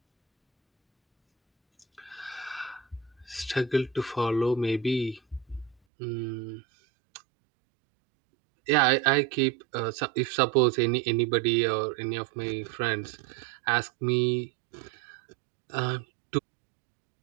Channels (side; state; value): left; drops out; at 5.8 s